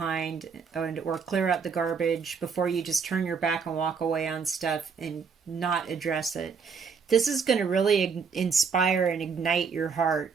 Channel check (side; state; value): left; quieter; 5.8 dB